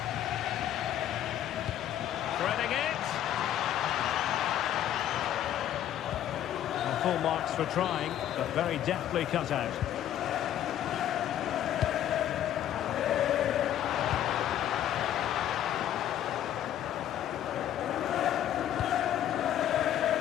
Threading it. Well, full marks for trying, but very deftly cut out.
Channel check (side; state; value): right; quieter; 11.4 dB